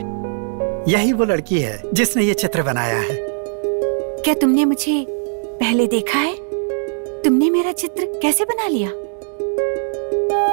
यही वो लड़की है जिसने ये चित्र बनाया है। क्या तुमने मुझे पहले देखा है? तुमने मेरा चित्र कैसे बना लिया?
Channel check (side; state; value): left; silent; digital silence